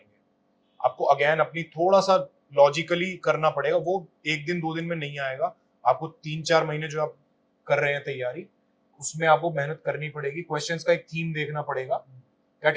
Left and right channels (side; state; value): both; identical; correlation 1.00